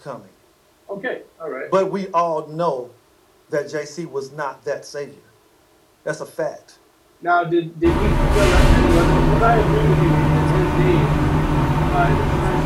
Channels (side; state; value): both; identical; correlation 1.00